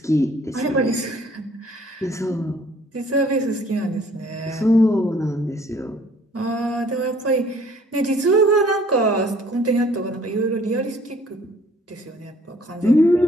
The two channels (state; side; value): normal; both; correlation 0.57